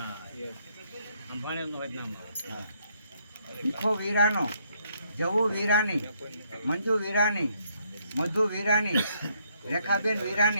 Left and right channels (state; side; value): inverted; both; correlation -0.71